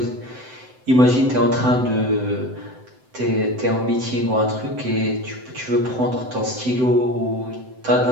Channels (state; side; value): late; left; 7.8 ms